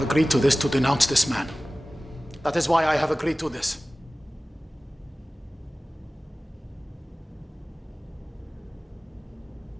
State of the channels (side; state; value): both; normal; correlation 0.97